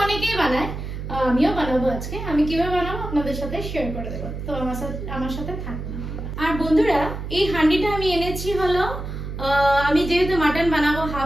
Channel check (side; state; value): right; noise; hum, 7 dB below the sound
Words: অনেকেই বানায়, আমিও বানাবো আজকে। আমি কিভাবে বানাবো আপনাদের সাথে শেয়ার করে দেবো, তো আমার সাথে থাকুন। আর বন্ধুরা, এই হান্ডিটা আমি এনেছি হলো, আমি যেহেতু মাটন বানাবো